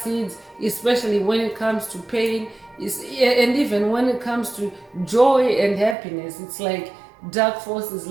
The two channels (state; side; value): drops out; left; at 6.0 s